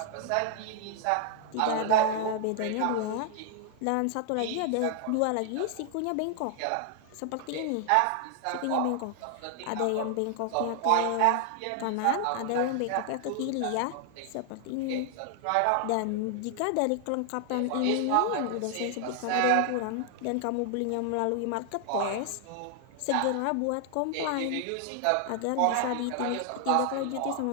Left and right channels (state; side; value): different; both; correlation 0.00